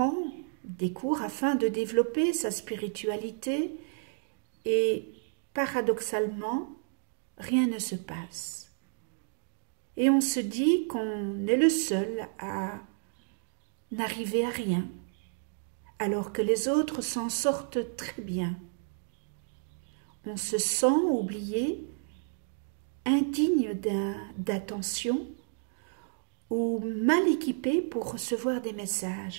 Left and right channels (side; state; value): left; silent; digital silence